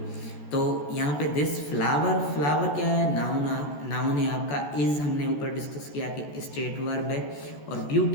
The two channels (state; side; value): late; right; 14 ms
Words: तो यहाँ पे दिस फ्लावर क्या है? नाउन है आपका। इज़ हमने ऊपर डिस्कस किया कि स्टेट वर्ब है। और